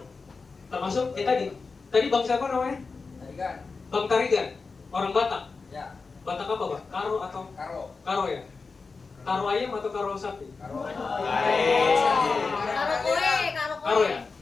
Termasuk tadi bang siapa namanya? Tarigan. Bang Tarigan, orang Batak. Ya. Batak apa bang? Karo atau? Karo. Karo ya? Karo ayam atau karo sapi? Karo. Karo ya?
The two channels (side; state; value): right; quieter; 4.4 dB